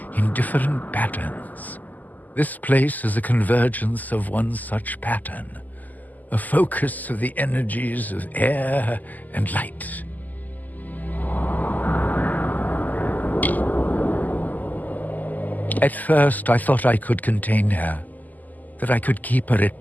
in different patterns. This place is a convergence of one such pattern, a focus of the energies of air and light. At first, I thought I could contain her, that I could keep her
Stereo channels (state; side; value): late; right; 0.082 ms